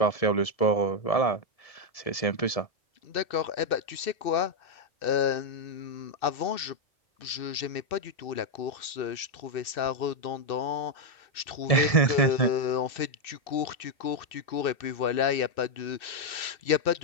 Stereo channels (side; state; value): right; late; 2.6 ms